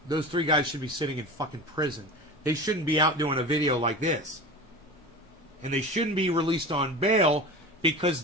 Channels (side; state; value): both; normal; correlation 0.31